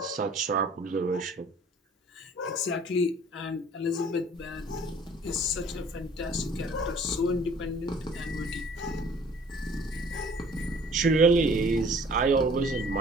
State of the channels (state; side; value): normal; both; correlation 0.53